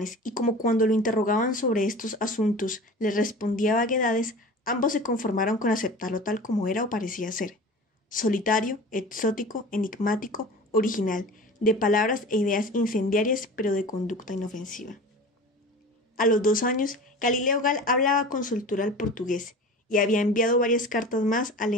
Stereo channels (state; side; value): normal; both; correlation 0.37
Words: y como cuando lo interrogaban sobre estos asuntos les respondía vaguedades, ambos se conformaron con aceptarlo tal como era o parecía ser. Solitario, exótico, enigmático, original, de palabras e ideas incendiarias pero de conducta inofensiva. A los 2 años, Galileo Gall hablaba con soltura el portugués y había enviado varias cartas más a